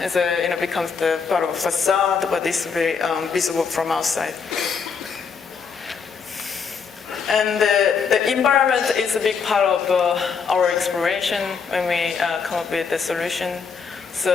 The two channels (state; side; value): quieter; right; 5.8 dB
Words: as becomes the part of a facade, but it's very visible from outside. And the environment is a big part of our exploration when we come up with the solution.